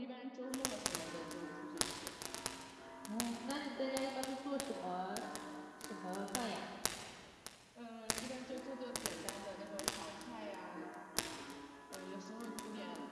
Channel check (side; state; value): both; identical; correlation 1.00